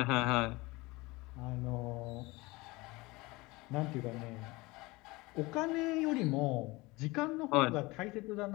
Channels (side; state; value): right; quieter; 22.7 dB